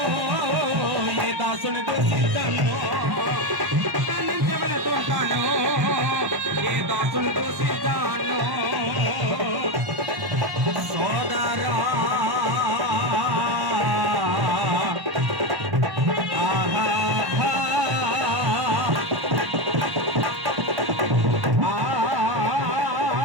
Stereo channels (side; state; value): left; late; 1.1 ms